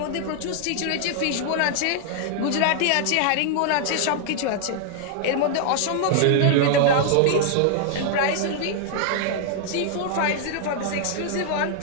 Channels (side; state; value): both; different; correlation -0.01